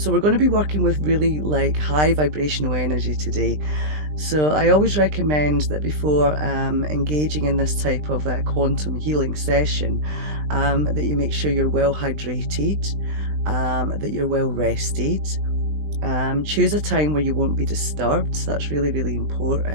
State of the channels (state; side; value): late; left; 20 ms